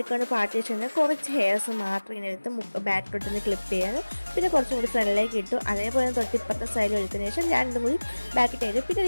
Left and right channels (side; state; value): both; inverted; correlation -1.00